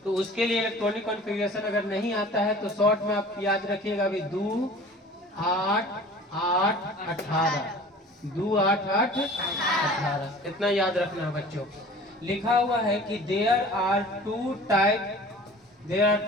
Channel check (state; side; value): normal; both; correlation 0.44